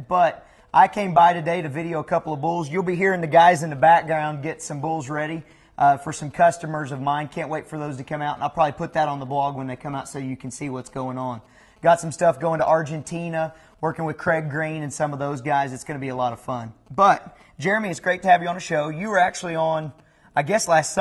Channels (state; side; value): identical; both; correlation 1.00